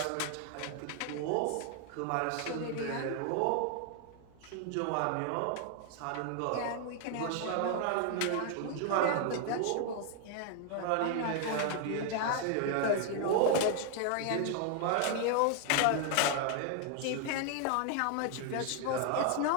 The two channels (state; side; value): different; both; correlation 0.00